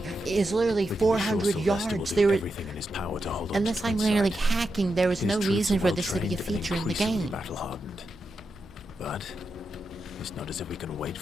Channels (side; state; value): both; normal; correlation 0.87